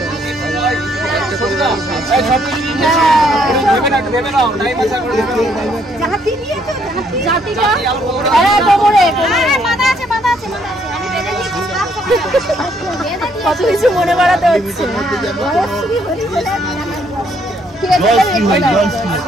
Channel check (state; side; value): normal; both; correlation 0.69